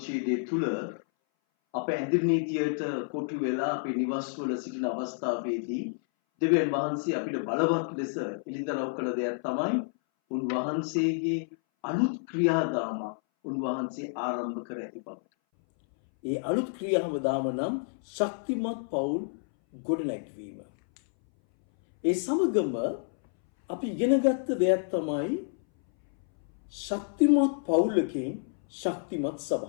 තුළ අප ඇඳිරි නීතියට කොටු වෙලා අපේ නිවස්වල සිටින අවස්ථාවේදී දෙවියන් වහන්සේ අපිට බලවත් ලෙස එළිදරව් කළ දෙයක් තමයි උන්වහන්සේගේ අලුත් ක්‍රියාදාම උන්වහන්සේ ආරම්භ කර ඇති බව. ඒ අලුත් ක්‍රියාදාම නම් ශක්තිමත් පවුල් ගොඩනැගීම. ඒ සමගම අපි ඉගෙනගත්ත දෙයක් තමයි ශක්තිමත් පවුලකින් ශක්තිමත්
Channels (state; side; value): silent; right; 58 dB below the other